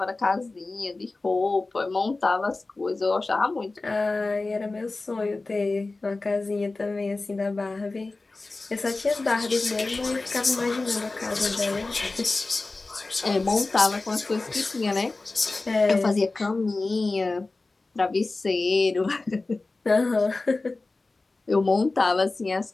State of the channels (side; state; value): right; quieter; 3.4 dB